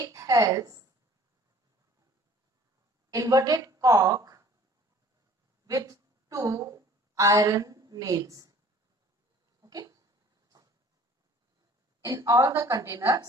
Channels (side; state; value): both; normal; correlation 0.52